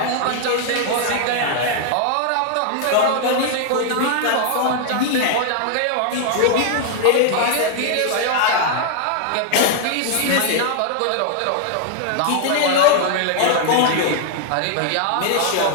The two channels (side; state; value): both; different; correlation 0.00